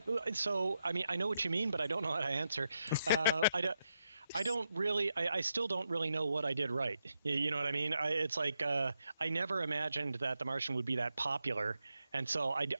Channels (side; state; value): both; inverted; correlation -0.83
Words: know what you mean, but I don't know how to answer. I still don't really know what I did right. You know what I mean? It's like I never imagined that The Martian would be that popular. And so